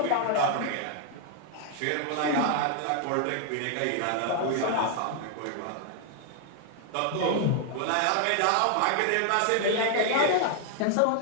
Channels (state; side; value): different; both; correlation 0.00